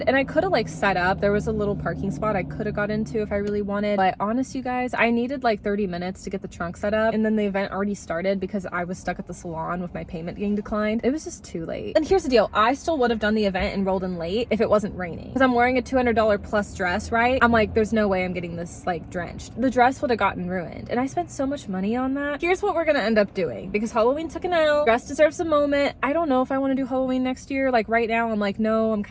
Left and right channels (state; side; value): identical; both; correlation 1.00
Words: and I could have like set up. There was a little parking spot I could have got into if I really wanted, but honest, you guys, I needed like 30 minutes to get the trunk set up, and then the event already started because I was stuck at the salon with my payment getting declined. It was just too late. And here's the deal, I still would have done the event and rolled in late if it wasn't raining, because I'm wearing a $200 plus dress, right? I'm like, there's no way I'm getting this like drenched. The dress would have gotten ruined, and I spent so much money on that. Here's what we're gonna end up doing, because Halloween took an L. Dress deserves a moment. I don't know if I want to do Halloween next year. Like right now, I'm like, no, I'm